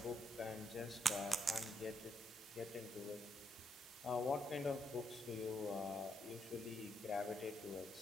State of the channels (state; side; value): normal; both; correlation 0.79